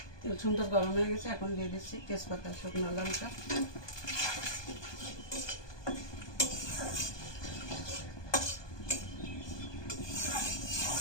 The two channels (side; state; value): right; late; 1.2 ms